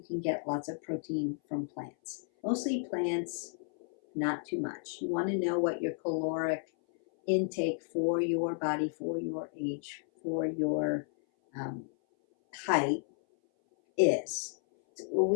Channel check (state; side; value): silent; right; 56 dB below the other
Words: can get lots of protein from plants. Mostly plants, not too much. You want to know what your caloric intake for your body, for your age, for your height is.